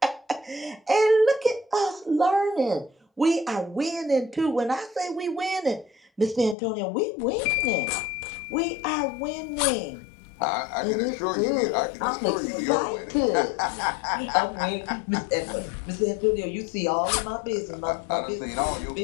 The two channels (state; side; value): drops out; right; at 6.6 s